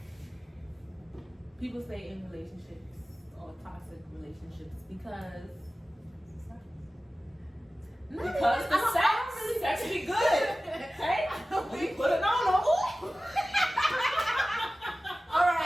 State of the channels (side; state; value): both; normal; correlation 0.96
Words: people stay in relationships or toxic relationships because the sex be good. Okay, we put it on them. All